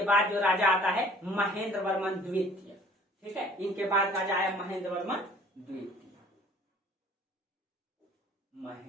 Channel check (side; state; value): both; normal; correlation 0.52